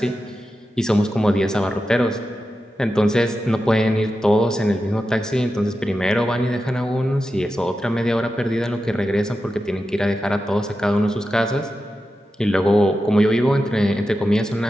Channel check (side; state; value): both; normal; correlation 0.90